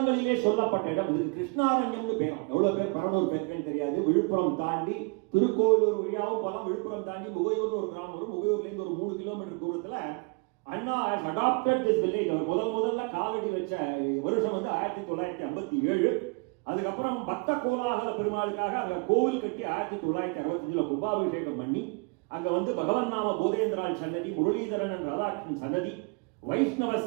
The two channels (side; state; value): left; quieter; 32.5 dB